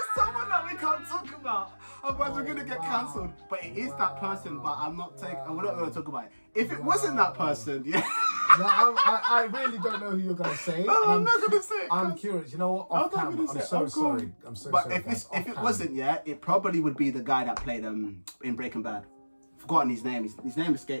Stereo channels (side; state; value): both; inverted; correlation -1.00